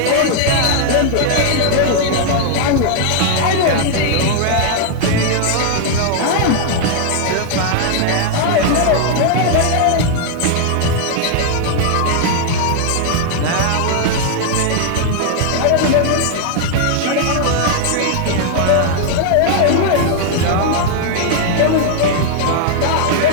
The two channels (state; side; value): different; both; correlation 0.00